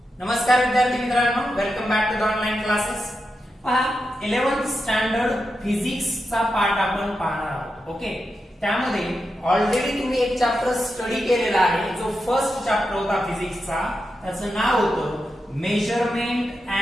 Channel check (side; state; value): both; normal; correlation 0.88